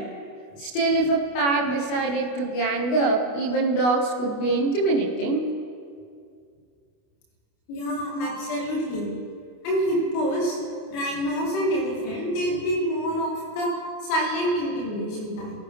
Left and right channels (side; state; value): right; late; 28 ms